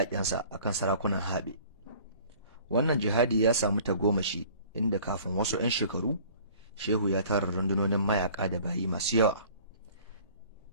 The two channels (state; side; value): inverted; both; correlation -0.50